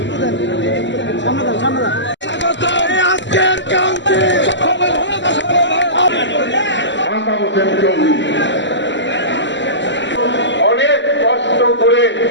অনেক কষ্ট করে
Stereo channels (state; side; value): late; right; 0.53 ms